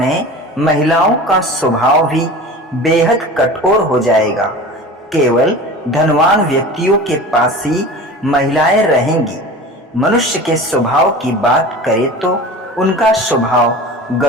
महिलाओं का स्वभाव भी बेहद कठोर हो जाएगा। केवल धनवान व्यक्तियों के पास ही महिलाएं रहेंगी। मनुष्य के स्वभाव की बात करें तो उनका स्वभाव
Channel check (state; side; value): normal; both; correlation 0.36